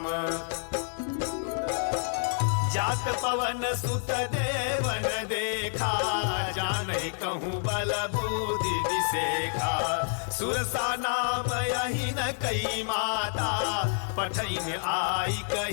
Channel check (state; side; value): silent; right; 59 dB below the other